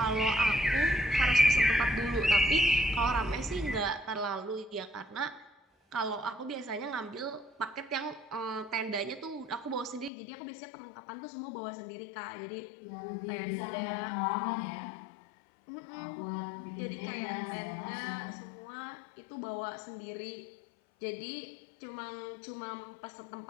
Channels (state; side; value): drops out; right; at 10.1 s